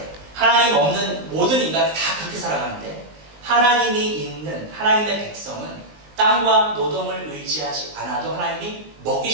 하나님 없는 모든 인간이 다 그렇게 살아가는데 하나님이 있는 하나님의 백성은 땅과 노동을 의지하지 않아도 하나님이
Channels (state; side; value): late; left; 19 ms